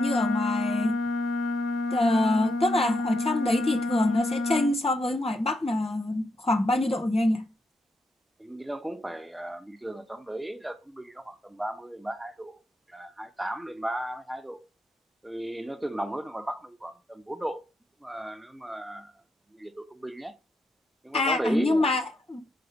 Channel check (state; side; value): normal; both; correlation 0.81